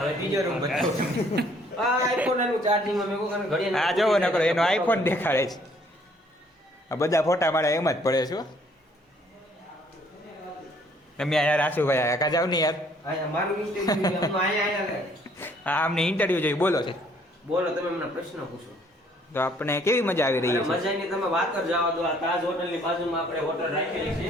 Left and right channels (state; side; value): normal; both; correlation 0.62